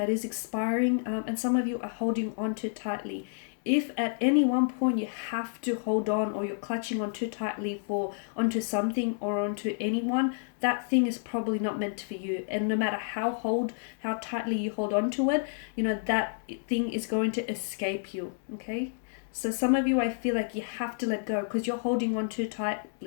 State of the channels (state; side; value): silent; right; digital silence